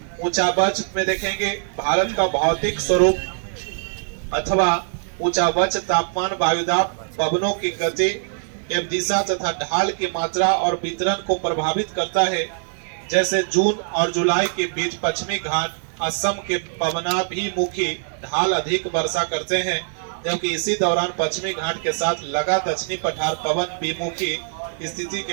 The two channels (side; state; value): left; silent; digital silence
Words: ऊंचावच में देखेंगे भारत का भौतिक स्वरूप अथवा ऊंचावच तापमान वायुदाब पवनों की गति एवं दिशा तथा ढाल की मात्रा और वितरण को प्रभावित करता है। जैसे जून और जुलाई के बीच पश्चिमी घाट असम के पवनाभिमुखी ढाल अधिक वर्षा करते हैं, जबकि इसी दौरान पश्चिमी घाट के साथ लगा दक्षिणी पठार पवन विमुखी स्थिति